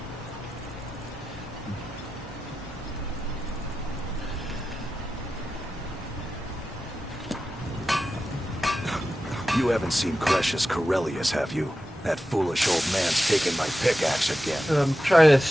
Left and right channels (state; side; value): normal; both; correlation 0.92